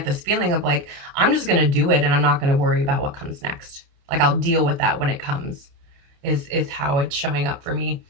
this feeling of like, I'm just gonna do it, and I'm not gonna worry about what comes next. Like, I'll deal with that when it comes. Is how it's showing up for me,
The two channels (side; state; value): left; late; 29 ms